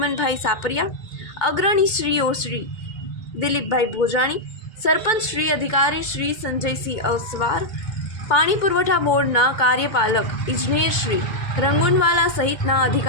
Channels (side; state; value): right; late; 2.2 ms